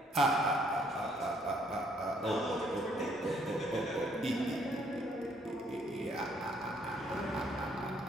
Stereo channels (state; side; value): normal; both; correlation 0.66